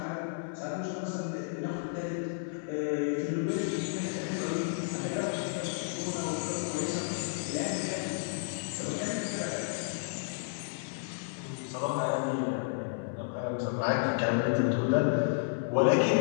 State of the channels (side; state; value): right; silent; 56 dB below the other